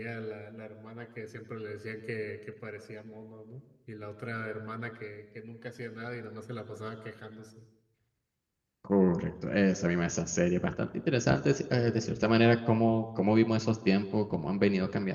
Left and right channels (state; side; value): identical; both; correlation 1.00